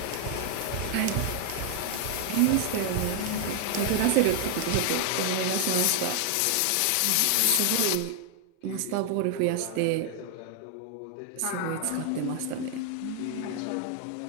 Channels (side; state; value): both; different; correlation 0.00